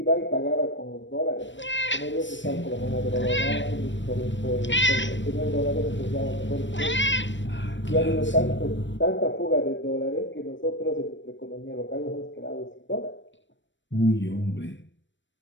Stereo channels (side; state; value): right; late; 0.54 ms